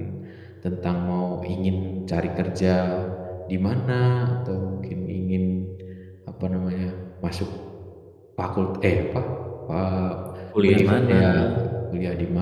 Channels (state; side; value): identical; both; correlation 1.00